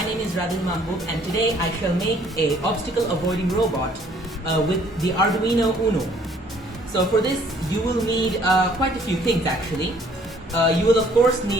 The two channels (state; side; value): normal; both; correlation 0.60